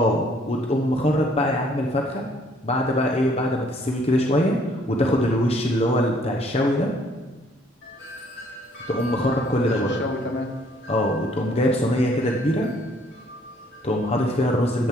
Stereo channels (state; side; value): normal; both; correlation 0.62